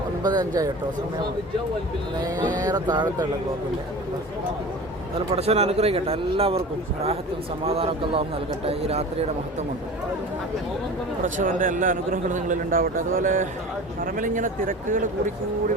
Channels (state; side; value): normal; both; correlation 0.36